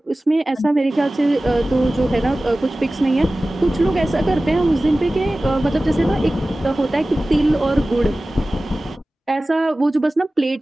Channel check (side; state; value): both; normal; correlation 0.97